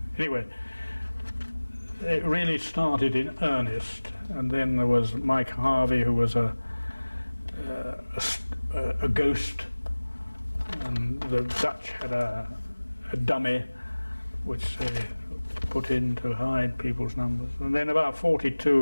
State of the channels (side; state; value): both; inverted; correlation -1.00